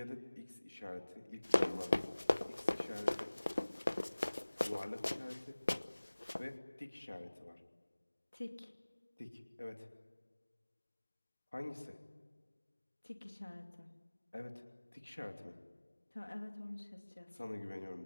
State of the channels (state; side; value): inverted; both; correlation -1.00